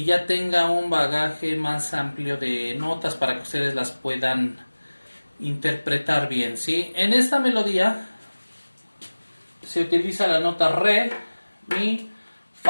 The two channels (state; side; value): inverted; both; correlation -1.00